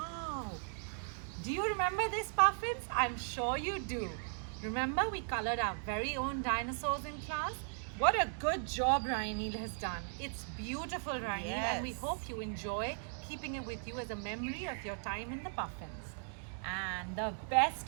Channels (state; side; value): silent; left; 53 dB below the other